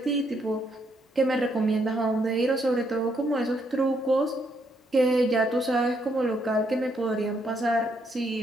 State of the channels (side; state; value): both; normal; correlation 0.74